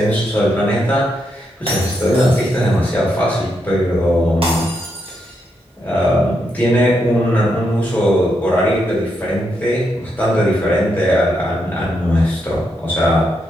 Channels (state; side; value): normal; both; correlation 0.81